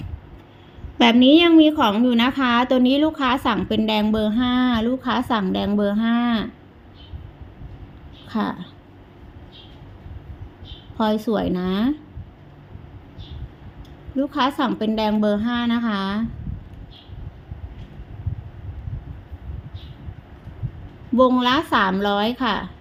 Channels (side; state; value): both; identical; correlation 1.00